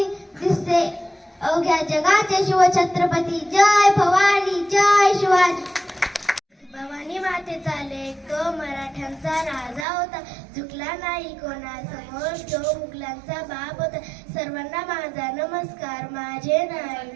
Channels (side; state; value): left; drops out; at 9.9 s